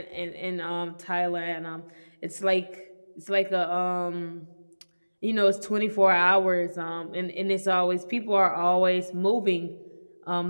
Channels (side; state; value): both; inverted; correlation -1.00